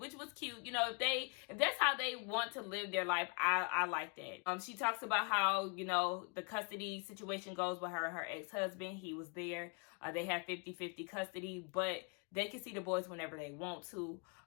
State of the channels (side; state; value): right; quieter; 35.8 dB